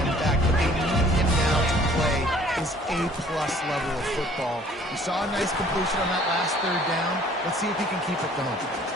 back, but they need him now to play his A-plus level of football. We saw a nice completion on that last third down. Let's see if he can keep it going.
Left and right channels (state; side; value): normal; both; correlation 0.55